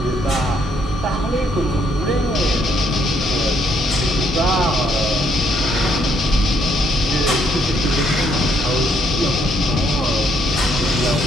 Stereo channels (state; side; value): normal; both; correlation 0.71